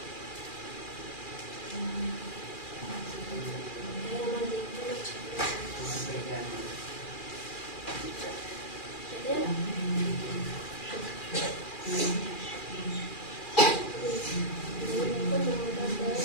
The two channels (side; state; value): right; late; 2.4 ms